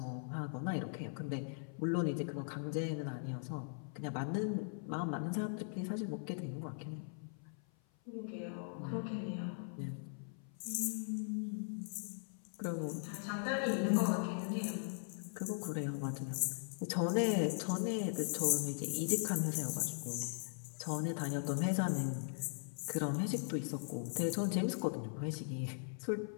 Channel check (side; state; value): right; silent; 51 dB below the other